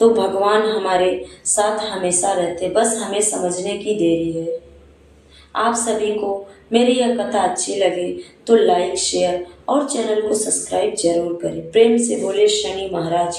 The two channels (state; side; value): identical; both; correlation 1.00